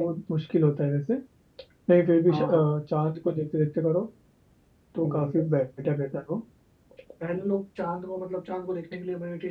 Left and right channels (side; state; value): both; identical; correlation 1.00